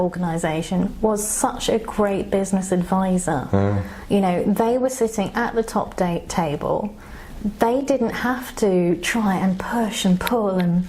was such a great business advisor. You know, they were sitting at the top table. They didn't have to try and push and pull and,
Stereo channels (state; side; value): identical; both; correlation 1.00